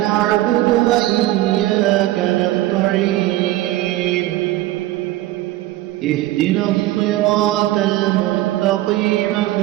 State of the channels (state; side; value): quieter; left; 16.0 dB